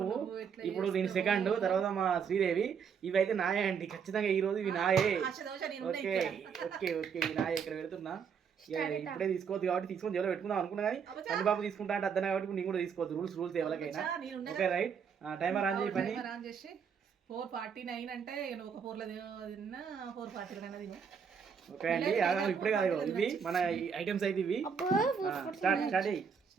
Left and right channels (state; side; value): quieter; left; 6.7 dB